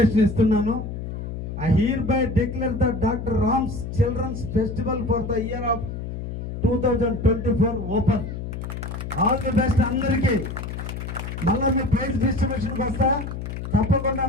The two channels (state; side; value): noise; left; hum, 7 dB below the sound